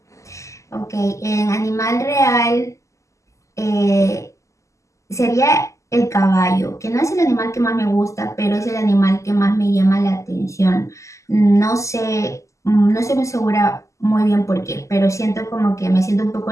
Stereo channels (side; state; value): right; late; 0.15 ms